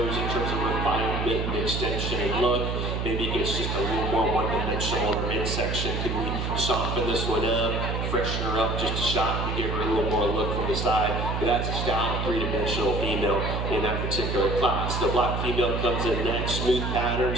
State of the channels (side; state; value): right; noise; hum, 1 dB below the sound